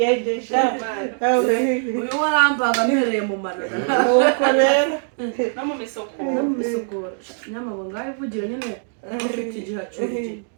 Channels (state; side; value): silent; left; 64 dB below the other